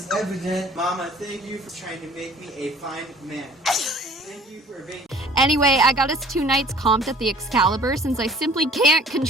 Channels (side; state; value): both; normal; correlation 0.52